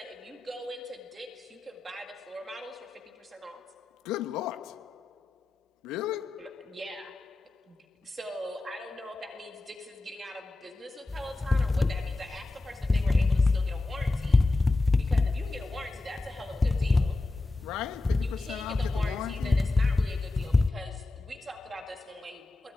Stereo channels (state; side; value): quieter; right; 3.0 dB